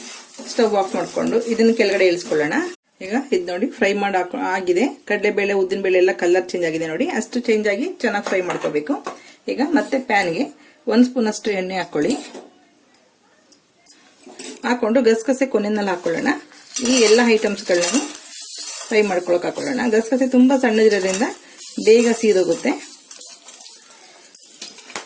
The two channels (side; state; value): both; identical; correlation 1.00